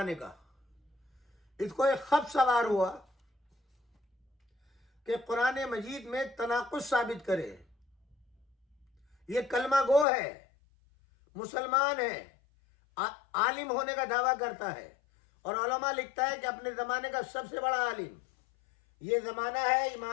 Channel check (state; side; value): drops out; right; at 10.1 s